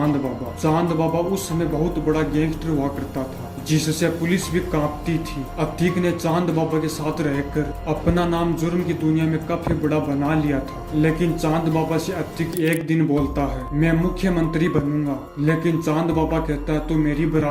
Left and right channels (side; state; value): both; identical; correlation 1.00